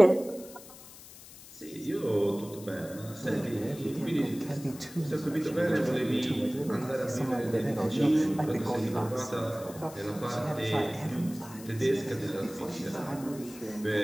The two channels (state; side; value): noise; left; hiss, 18 dB below the sound